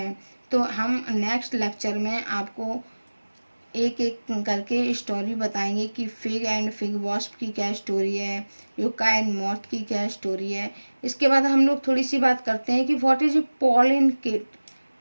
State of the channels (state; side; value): inverted; both; correlation -1.00